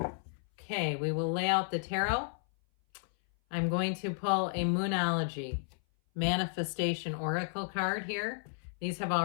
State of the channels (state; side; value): silent; right; 56 dB below the other